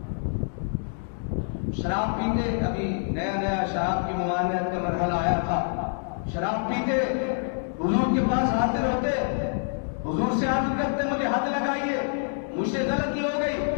شراب پیتے، ابھی نیا شراب کی ممانعت کا مرحلہ آیا تھا. شراب پیتے، حضور کے پاس حاضر ہوتے، حضور سے عرض کرتے مجھے حد لگائیے، مجھ سے غلطی ہو گئی.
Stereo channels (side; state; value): right; silent; digital silence